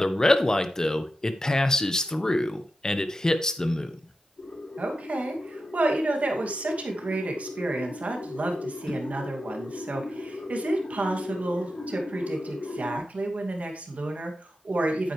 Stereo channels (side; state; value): both; normal; correlation 0.90